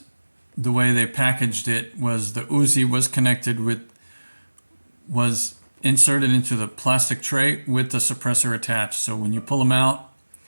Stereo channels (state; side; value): inverted; both; correlation -1.00